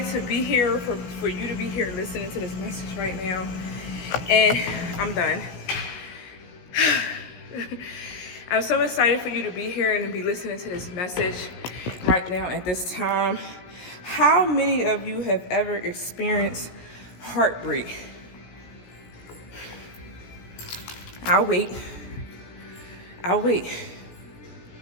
to be here, for you to be here listening to this message right now. And I'm done. I'm so excited for you to be here and to be listening to this message right now at this time. How many of you have ever experienced heartbreak? I'll wait.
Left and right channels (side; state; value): right; late; 17 ms